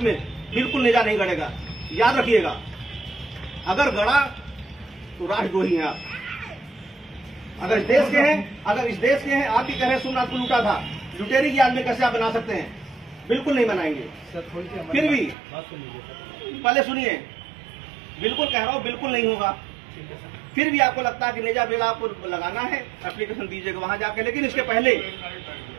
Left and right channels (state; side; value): drops out; left; at 15.4 s